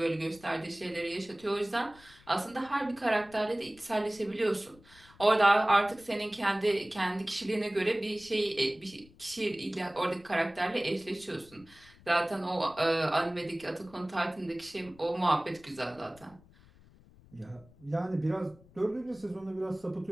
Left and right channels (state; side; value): noise; left; rumble, 25 dB below the sound